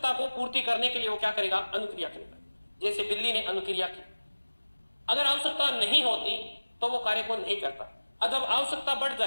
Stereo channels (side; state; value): both; inverted; correlation -1.00